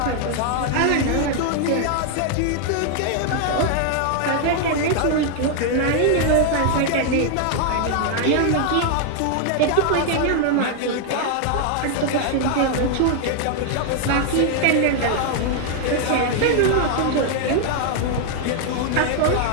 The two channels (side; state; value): both; different; correlation 0.00